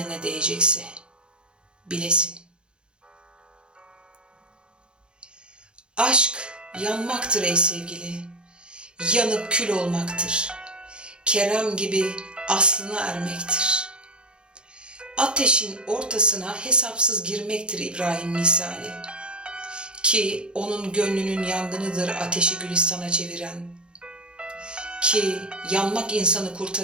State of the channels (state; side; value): late; left; 0.052 ms